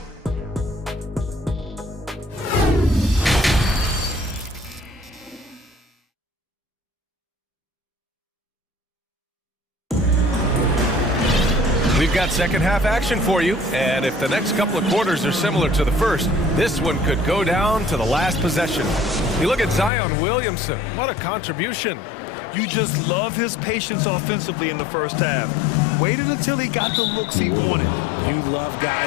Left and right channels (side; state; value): right; drops out; at 19.9 s